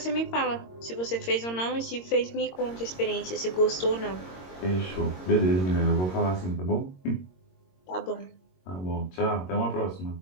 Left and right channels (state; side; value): late; right; 22 ms